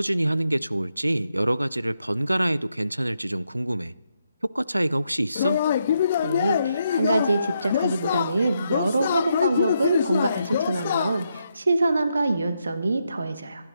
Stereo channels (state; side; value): inverted; both; correlation -0.81